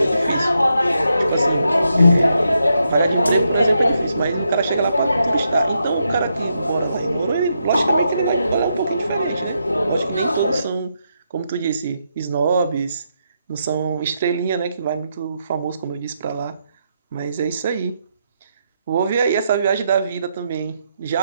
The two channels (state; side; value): inverted; both; correlation -0.81